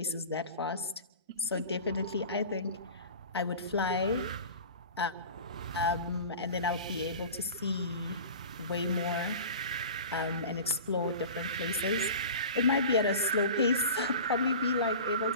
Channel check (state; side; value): inverted; both; correlation -0.36